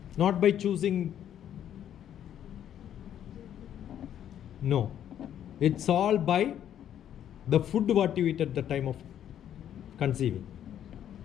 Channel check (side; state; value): right; quieter; 10.3 dB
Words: Not by choosing. No. It's all by the food what you eat at the time of conceiving.